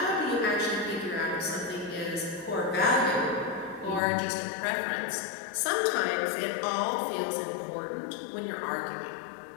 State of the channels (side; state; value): right; drops out; at 4.0 s